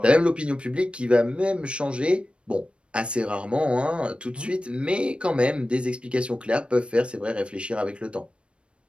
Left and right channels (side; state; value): left; late; 0.058 ms